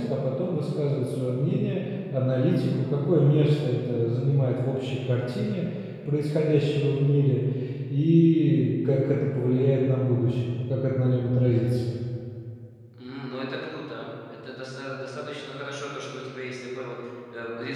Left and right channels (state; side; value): identical; both; correlation 1.00